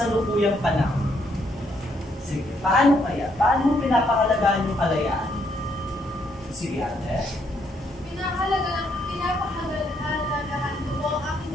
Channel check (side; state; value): both; normal; correlation 0.73